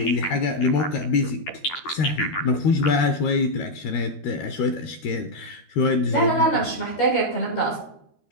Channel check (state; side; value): late; right; 13 ms